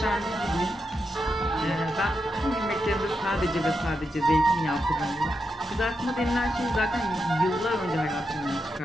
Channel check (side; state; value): both; normal; correlation 0.85